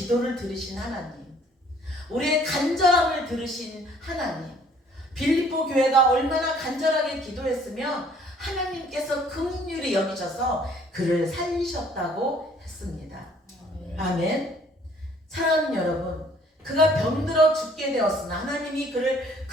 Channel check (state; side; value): normal; both; correlation 0.59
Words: 들으신 하나님, 우리의 간절함을 들으신 하나님, 빌립보 교회가 얼마나 간절하게 기도했으면 하나님께서 긍휼히 여기셔서 그를 살리셨다고 했습니다. 아멘. 사랑하는 여러분, 그가 병들어 죽게 되었으나 하나님이 그를